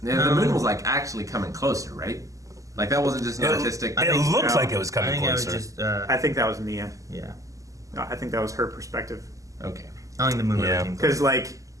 Yeah, the moon was like actually coming closer, right? Like that wasn't just an artistic. It looked no. like it was I coming think closer. I was just, I think that was Nia. yeah. I think that was her perspective. Okay. I think the moon Yeah. really came close. Because, like,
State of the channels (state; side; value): late; left; 0.16 ms